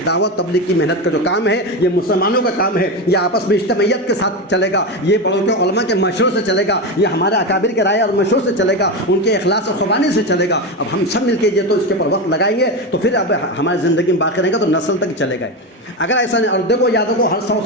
دعوت تبلیغ کی محنت کا جو کام ہے یہ مسلمانوں کا کام ہے، یہ آپس میں اجتماعیت کے ساتھ چلے گا، یہ بڑوں کے علماء کے مشورے سے چلے گا، یہ ہمارے اکابر کے رائے اور مشورے سے چلے گا، ان کے اخلاص اور قربانی سے چلے گا۔ اب ہم سب مل کے یہ تو اس کے اوپر وقت لگائیں گے تو پھر اب ہماری زندگی میں باقی رہے گا تو نسل تک چلے گا۔ اگر ایسا نہیں، اور دیکھو یاد رکھو ہر 100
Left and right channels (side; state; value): both; normal; correlation 0.16